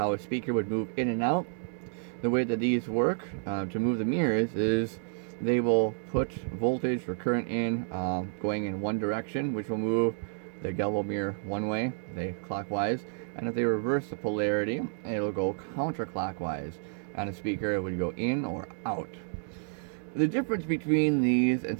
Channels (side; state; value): left; silent; digital silence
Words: a speaker would move in and out, the way that these work to move the mirrors is they will put voltage or current in going in one direction, which will move the galvo mirror one way, clockwise, and if they reverse the polarity, it'll go counterclockwise. On a speaker, it would go in or out. The difference between these and,